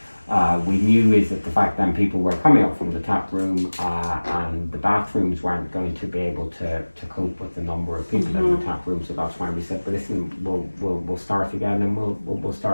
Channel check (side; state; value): both; inverted; correlation -1.00